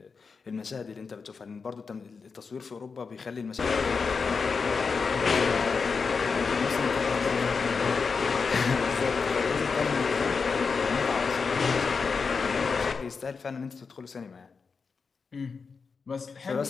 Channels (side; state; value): right; quieter; 5.1 dB